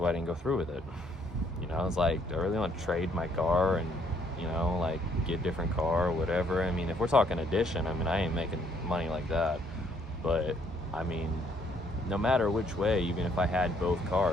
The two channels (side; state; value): both; normal; correlation 0.67